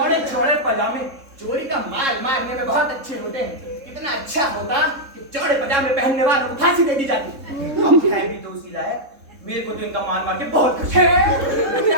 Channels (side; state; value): left; late; 3.7 ms